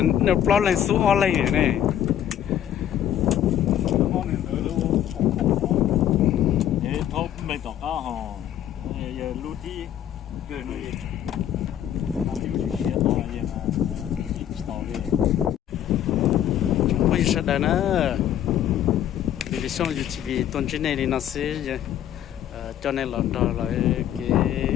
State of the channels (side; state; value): right; quieter; 10.8 dB